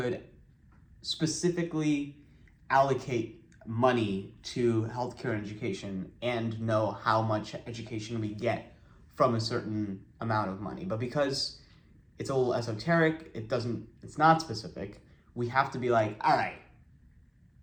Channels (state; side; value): identical; both; correlation 1.00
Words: specifically allocate money to healthcare and education and know how much education we get from a certain amount of money. But because it's a little esoteric, it's not specific, we have to be like, all right,